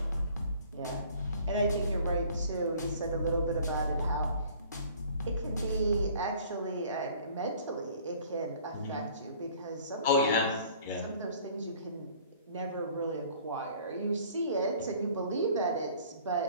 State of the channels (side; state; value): both; inverted; correlation -0.53